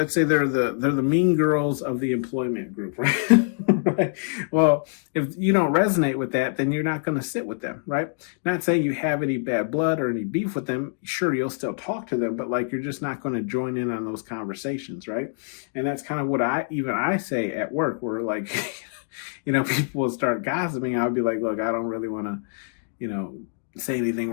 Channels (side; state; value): right; silent; digital silence